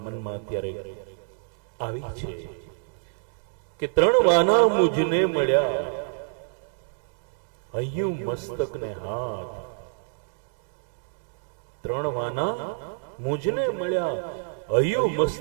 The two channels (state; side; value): silent; left; digital silence